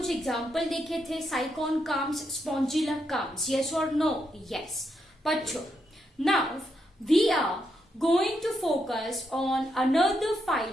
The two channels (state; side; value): normal; both; correlation 0.81